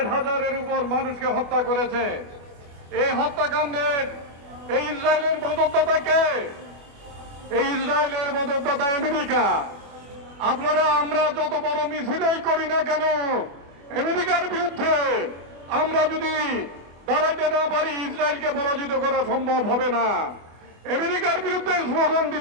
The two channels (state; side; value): late; left; 25 ms